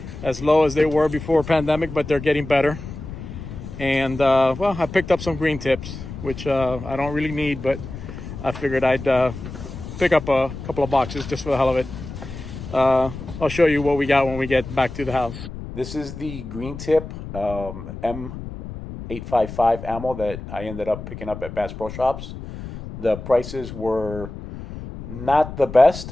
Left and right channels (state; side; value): noise; left; rumble, 11 dB below the sound